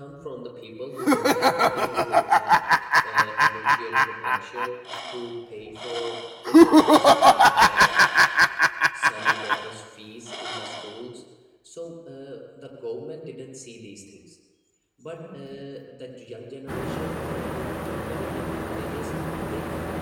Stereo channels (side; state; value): both; identical; correlation 1.00